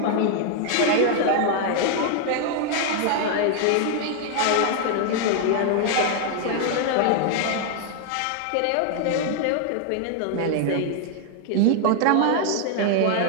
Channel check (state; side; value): different; both; correlation 0.00